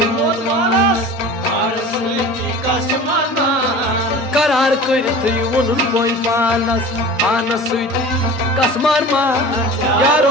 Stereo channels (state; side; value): normal; both; correlation 0.38